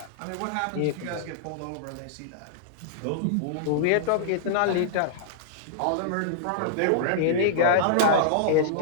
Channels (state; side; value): different; both; correlation -0.02